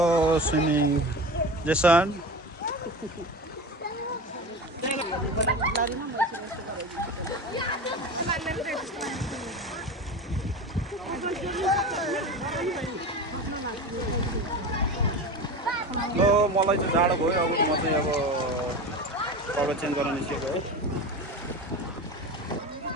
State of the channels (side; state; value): both; normal; correlation 0.28